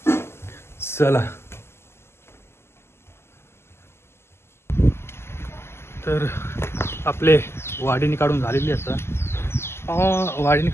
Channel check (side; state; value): right; late; 0.12 ms